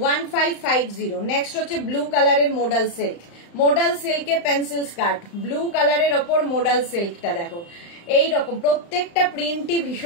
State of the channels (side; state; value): right; late; 35 ms